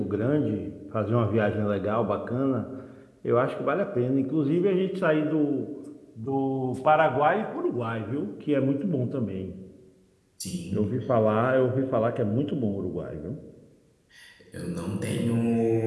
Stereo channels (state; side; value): identical; both; correlation 1.00